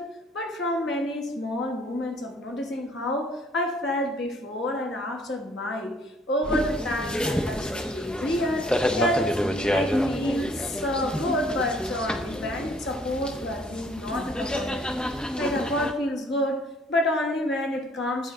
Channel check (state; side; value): normal; both; correlation 0.60